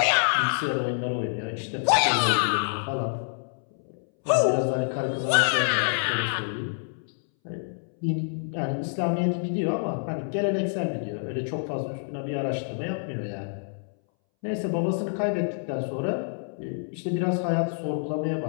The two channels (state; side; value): silent; right; 60 dB below the other